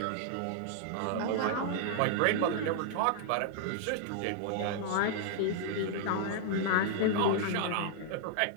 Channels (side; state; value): both; different; correlation -0.01